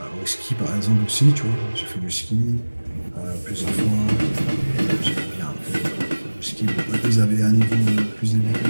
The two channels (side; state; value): both; inverted; correlation -1.00